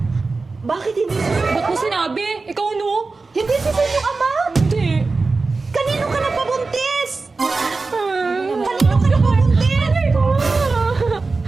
Bakit hindi si Ba't mo sinabi? Ikaw no? Hindi si Sin yung ama? Hindi. Kanino ka nagpabuntis? Kanino Kanino ka nagpabuntis?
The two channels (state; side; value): quieter; left; 3.9 dB